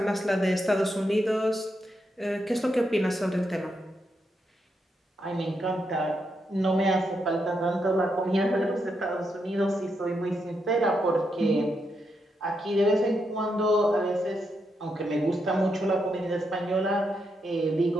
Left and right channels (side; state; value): both; normal; correlation 0.82